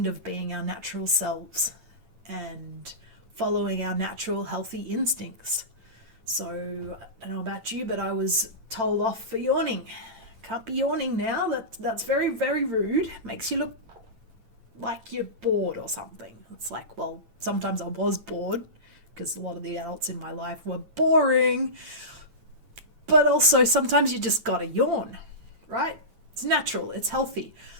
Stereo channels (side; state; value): left; late; 8.9 ms